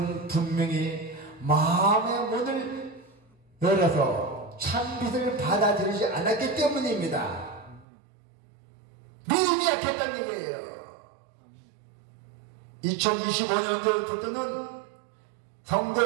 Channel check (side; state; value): left; drops out; at 7.9 s